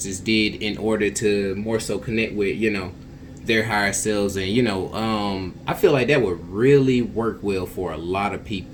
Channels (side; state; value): both; identical; correlation 1.00